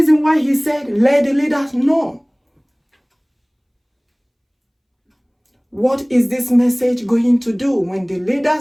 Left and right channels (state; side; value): identical; both; correlation 1.00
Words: why he said, let the leaders know. What is this message going to do when the